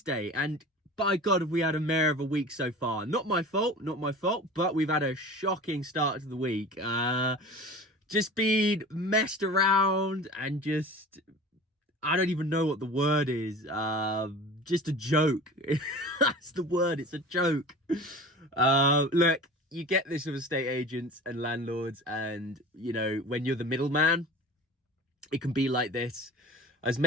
and by God, have we had a mare of a week so far. Not my fault, but we've had a shocking start to the week. Just been messed around and just, I don't even know what the word is. Just a joke. That's the word, it's a joke. Look, you get this with estate agents and landlords, and you know, when you're the middleman, it can be like this. I was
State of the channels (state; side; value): normal; both; correlation 0.38